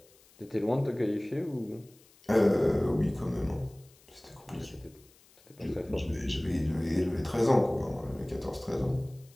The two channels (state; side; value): noise; left; hiss, 28 dB below the sound